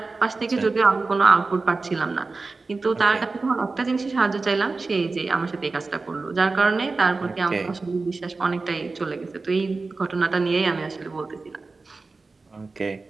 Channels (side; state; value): left; quieter; 3.8 dB